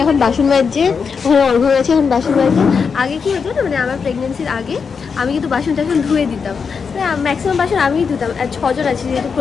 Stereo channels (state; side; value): quieter; right; 5.8 dB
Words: এখন বাসন মাজছে, ওখানে অর্ঘ্য গেছে এখন বাসন মাজছে। আগে কি হতো না, মানে আমার প্রেগনেন্সির আগে আমি কিন্তু বাসন টাসন ধুয়ে দিতাম, ম্যাক্সিমাম বাসন আমিই ধুতাম। আর 6 জন আছি, যেহেতু